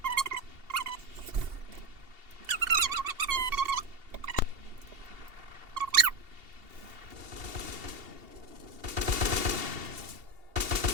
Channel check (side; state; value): left; late; 2.7 ms